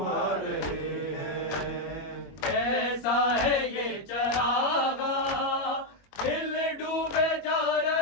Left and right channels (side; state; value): right; late; 21 ms